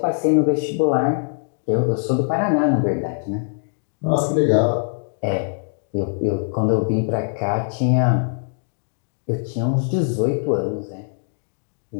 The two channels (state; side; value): silent; right; digital silence